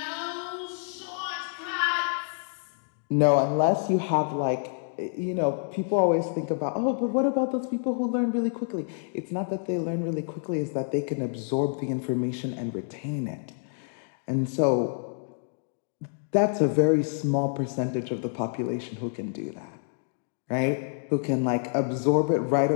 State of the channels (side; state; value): right; silent; digital silence